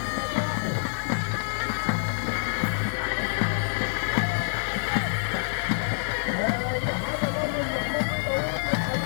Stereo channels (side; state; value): right; silent; digital silence